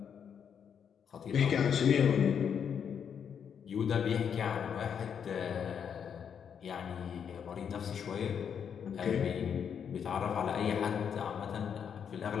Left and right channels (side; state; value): right; quieter; 7.6 dB